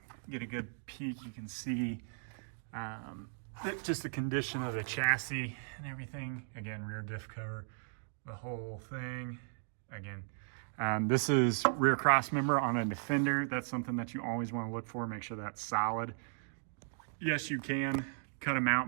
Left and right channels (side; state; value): left; silent; digital silence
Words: get a good peek. You can see just the condition of the chassis and everything. Again, rear diff cover, the whole thing. Again, this is rear cross member on a Defender. That's something that you always want to look for. Make sure that's solid. Yes, you can cut them